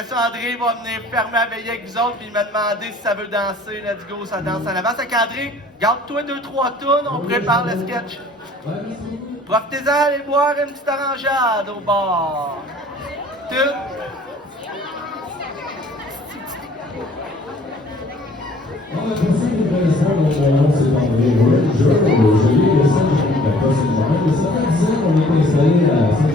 ça, André va venir fermer la veillée avec vous autres, puis il m'a demandé si ça veut danser. Let's go, ça danse en avance. Avec André, garde-toi 2-3 tunes, on prépare le sketch. Profitez-en d'aller boire une petite orangeade au bar. Tout. On a passé une belle soirée, mon nom c'est André Ranger, je lis le Saint-Germain, pas Saint-Germain, mais ça fait 10 ans qu'on est installé à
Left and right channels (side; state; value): both; normal; correlation 0.54